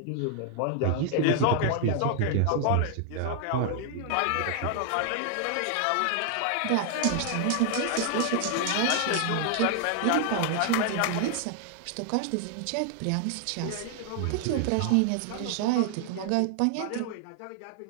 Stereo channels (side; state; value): both; different; correlation 0.00